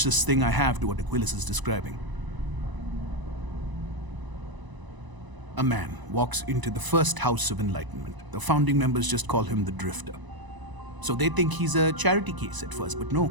thing I have to what Aquilas is describing. A man walks into the first House of Enlightenment. The founding members just call him the Drifter. So they think he's a charity case at first, but no,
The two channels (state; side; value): late; left; 1.0 ms